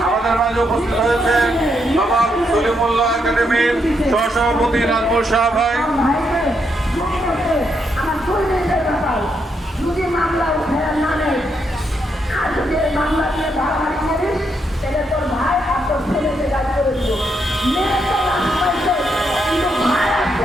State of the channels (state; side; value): normal; both; correlation 0.78